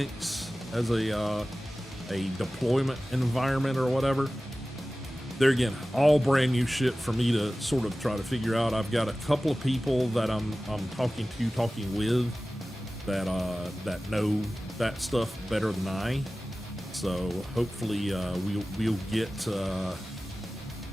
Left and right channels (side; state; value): both; normal; correlation 0.96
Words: as a deployment environment or whatever. There again, all brand new shit for me to sort of try to figure out. I've got a couple of people that I'm talking with that know that stuff better than I. So hopefully we'll get